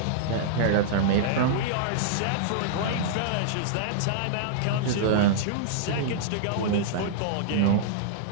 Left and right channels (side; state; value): both; different; correlation -0.02